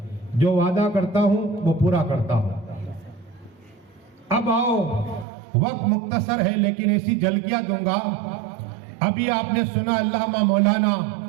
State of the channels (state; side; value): drops out; left; at 5.2 s